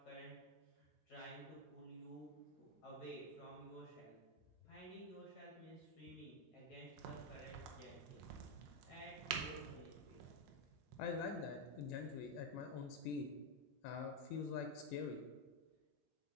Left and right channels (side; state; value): both; normal; correlation 0.04